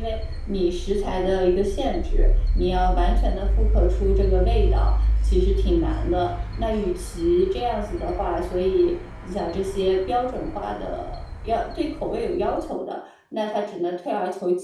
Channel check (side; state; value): both; identical; correlation 1.00